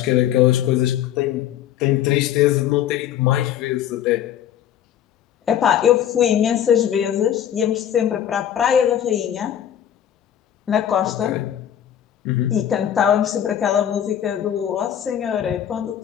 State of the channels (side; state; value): right; quieter; 10.3 dB